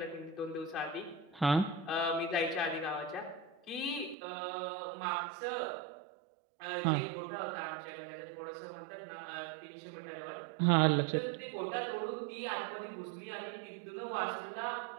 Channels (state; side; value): drops out; left; at 4.2 s